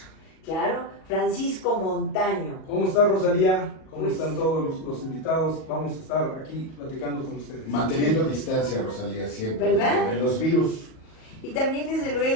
Claro, Francisco Montaño. ¿Cómo está Rosalía? ¿Cómo Pues, están todos los invitados? Vamos a estar aquí platicando con ustedes. Manteniendo distancia, Rosalía, siempre. ¿Verdad? De los virus. Y también desde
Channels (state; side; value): late; right; 38 ms